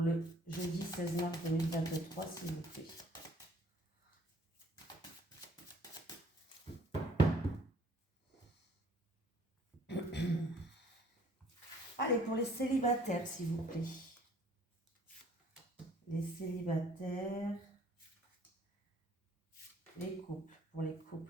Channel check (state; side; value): normal; both; correlation 0.58